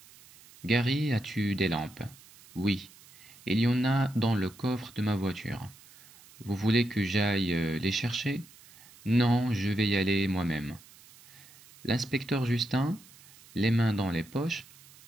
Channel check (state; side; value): noise; right; hiss, 23 dB below the sound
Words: Gary, as-tu des lampes? Oui. Il y en a dans le coffre de ma voiture. Vous voulez que j'aille les chercher? Non, je vais y aller moi-même. L'inspecteur Justin, les mains dans les poches,